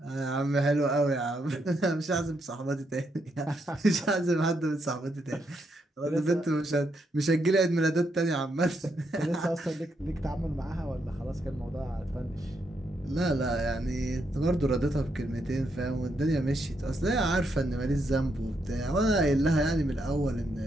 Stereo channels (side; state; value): both; normal; correlation 0.79